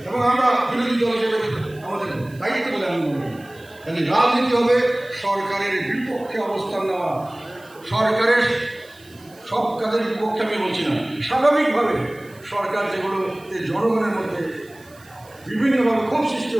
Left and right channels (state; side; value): noise; right; hiss, 26 dB below the sound